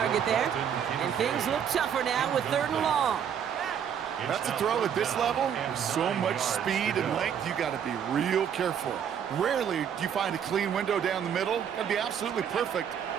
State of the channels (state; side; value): quieter; left; 8.4 dB